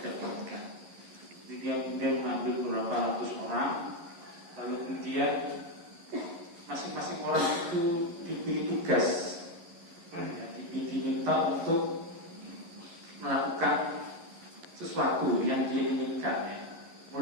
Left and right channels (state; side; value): late; left; 11 ms